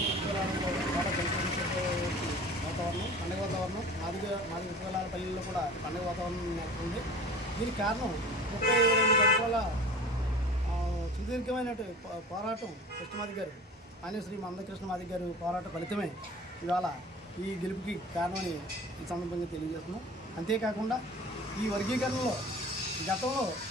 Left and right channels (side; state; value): both; normal; correlation 0.40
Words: వాతావరణం, పండుగ వాతావరణం, మాదిగ విశ్వలాల పల్లెల్లో కూడా పండుగ వాతావరణం నెలకొంది. దీనికి కారణం 32 సంవత్సరాల సుదీర్ఘమైన పోరాటం కృష్ణమాదిక్ గారు, ఆయన శ్రీ మందకృష్ణ మాదిక్ గారు పోరాట ఫలితమే ఇవాళ ఈ గెలుపుకి కారణమని ఈ సందర్భంగా తెలియజేస్తున్నాం. అంతేకాకుండా ఈ వర్గీకరణలో గతంలో